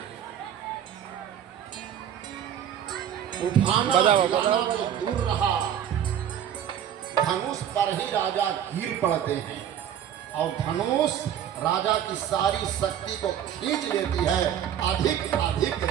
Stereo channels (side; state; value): left; quieter; 9.8 dB